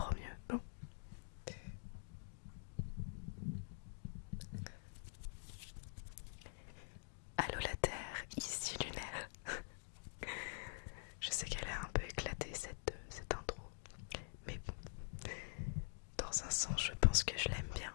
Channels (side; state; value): right; silent; digital silence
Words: mieux. Bon. Allô la Terre, ici Lunaire. Je sais qu'elle est un peu éclatée cette intro, mais bon, dans un sens je pense que je l'aime bien.